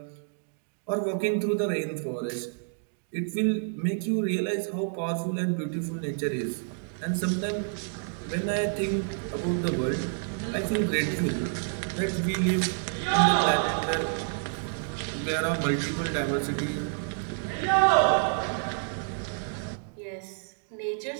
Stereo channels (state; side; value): silent; left; digital silence